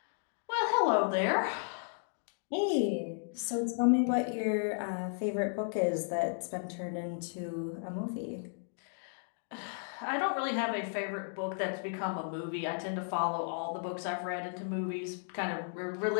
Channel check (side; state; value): right; silent; digital silence